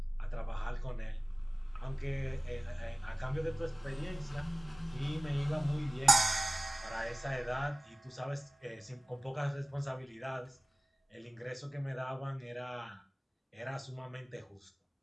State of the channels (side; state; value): both; normal; correlation 0.96